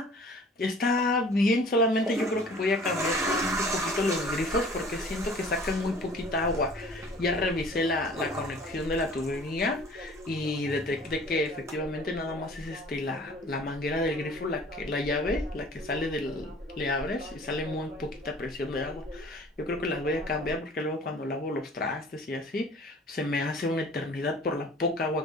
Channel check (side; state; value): both; normal; correlation 0.49